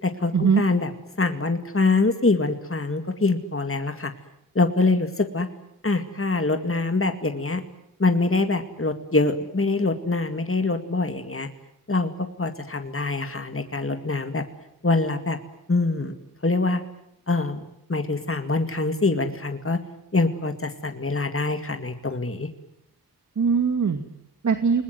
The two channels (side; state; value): both; normal; correlation 0.44